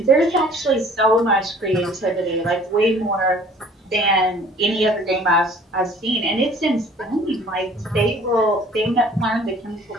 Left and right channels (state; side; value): normal; both; correlation 0.52